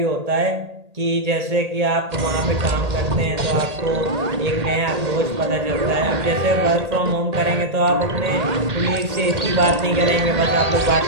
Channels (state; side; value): late; left; 1.8 ms